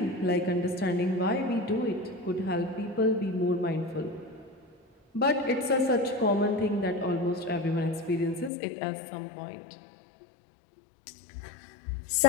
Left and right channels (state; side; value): drops out; right; at 8.5 s